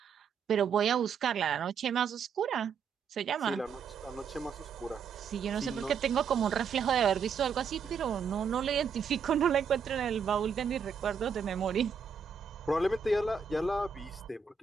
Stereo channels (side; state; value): left; quieter; 6.3 dB